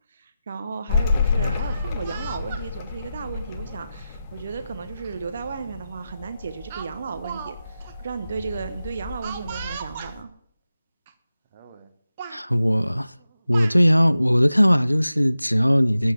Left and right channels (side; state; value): both; inverted; correlation -0.93